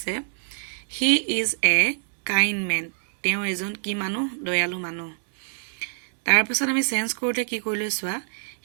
he is a kind man তেওঁ এজন কি মানুহ দয়ালু মানুহ তাৰ পিছত আমি চেঞ্জ কৰোতে কি কৰিলো চোৱা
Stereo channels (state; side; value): silent; left; digital silence